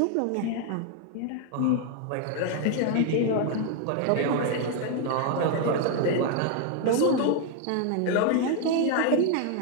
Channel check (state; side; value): different; both; correlation 0.01